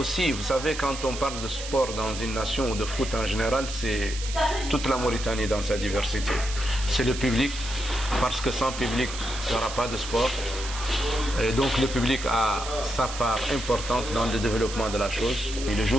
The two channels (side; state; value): right; noise; hiss, 9 dB below the sound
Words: vous savez, quand on parle de sport dans une nation ou de foot en général, c'est toute la Mauritanie dans sa diversité. C'est le public, parce que sans public, il n'y aura pas de sport. Et donc le public a sa part importante dans le développement de la chose. Et le